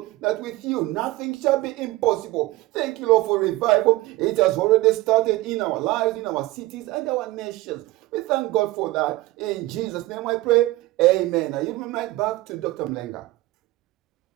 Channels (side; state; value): left; quieter; 18.8 dB